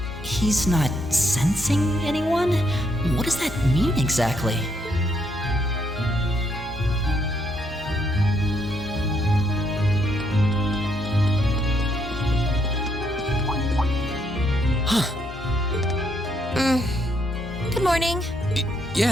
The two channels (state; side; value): normal; both; correlation 0.74